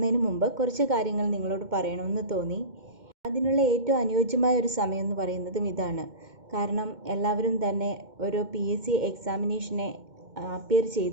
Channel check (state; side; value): late; left; 2.1 ms